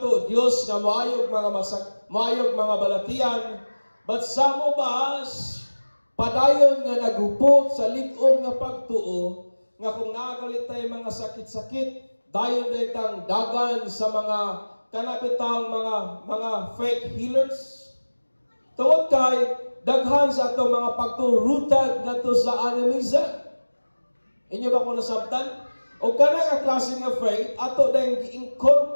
Dios nga maayog mga balatian, but some of us padayon nga naghupot sa lig-on nga pagtuo nga kung nagalit tay mga sakit-sakit dayon daytang dagan sa mga kanabitang mga fake healers. Tungod kay daghan sa atong mga pagturutad nato sa animism. Inyo ba kung nasabtan? O kanang klase nga faith, ato dahil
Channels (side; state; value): both; inverted; correlation -1.00